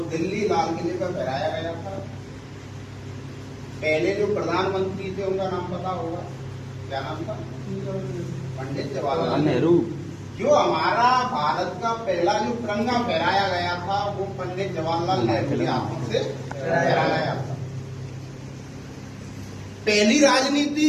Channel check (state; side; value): identical; both; correlation 1.00